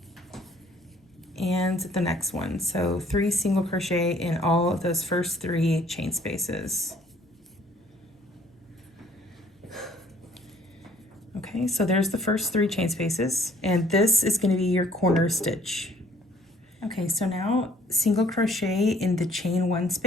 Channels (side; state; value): both; normal; correlation 0.59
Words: And the next one, so 3 single crochet in all of those first 3 chain spaces. Okay, so there's the first 3 chain spaces, and this is going to be your corner stitch. Okay, so now single crochet in the chain 1